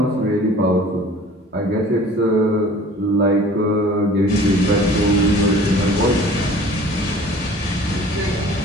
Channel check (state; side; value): normal; both; correlation 0.47